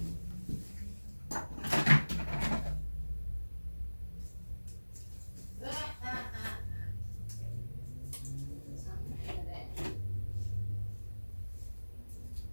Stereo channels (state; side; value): inverted; both; correlation -1.00